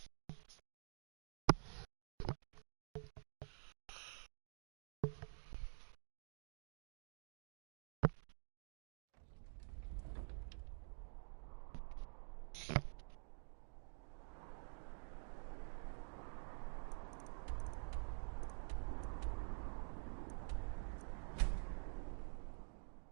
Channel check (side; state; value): left; silent; digital silence